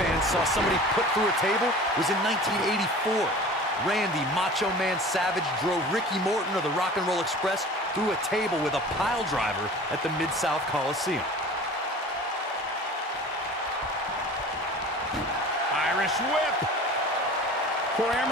saw somebody put through a table was in 1984. Randy Macho Man Savage drove Ricky Morton of the Rock and Roll Express through a table with a pile driver at the Mid-South Coliseum. Irish whip. Corey, I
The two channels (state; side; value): normal; both; correlation 0.41